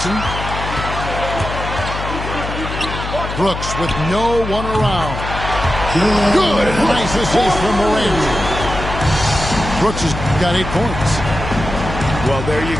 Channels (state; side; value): noise; left; hum, 6 dB below the sound